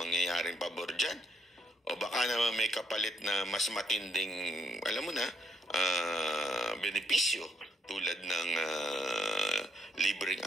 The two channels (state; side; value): normal; both; correlation 0.75